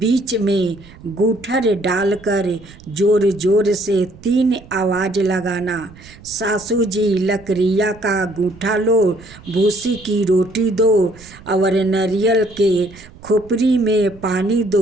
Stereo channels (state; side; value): noise; right; rumble, 21 dB below the sound